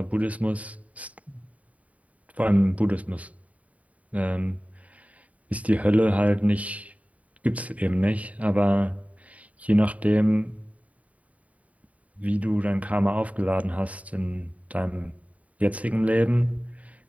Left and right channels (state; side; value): late; left; 0.069 ms